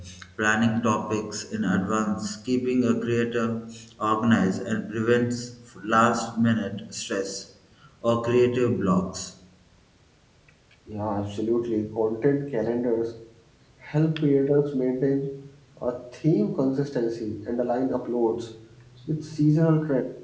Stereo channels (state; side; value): identical; both; correlation 1.00